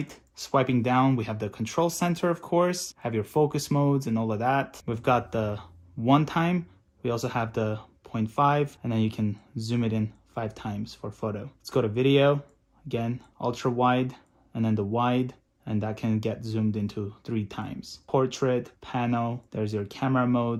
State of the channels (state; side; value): identical; both; correlation 1.00